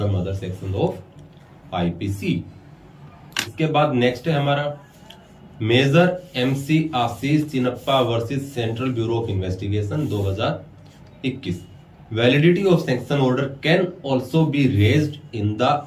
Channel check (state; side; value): identical; both; correlation 1.00